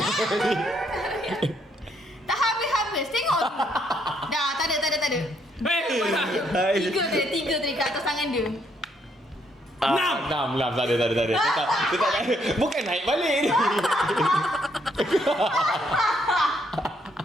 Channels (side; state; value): both; normal; correlation 0.72